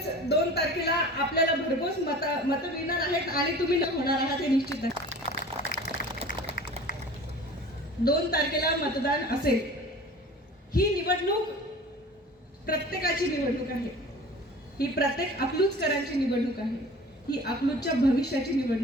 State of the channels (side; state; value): both; normal; correlation 0.41